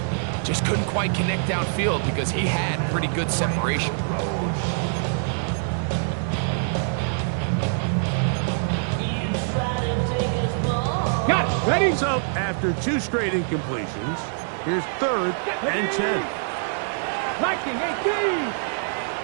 just couldn't quite connect downfield because he had pretty good separation. Got it. Ready? So, after 2 straight incompletions, here's 3rd and 10. Liking 18.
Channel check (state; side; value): silent; left; digital silence